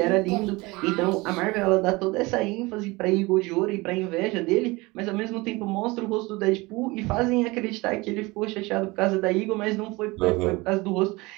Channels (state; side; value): quieter; left; 23.2 dB